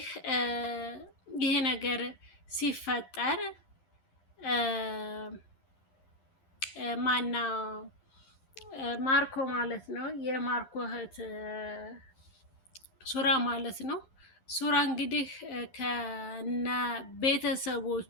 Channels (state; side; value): late; right; 11 ms